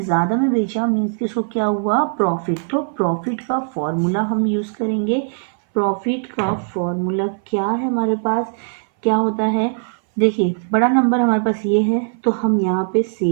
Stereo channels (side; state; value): left; silent; 61 dB below the other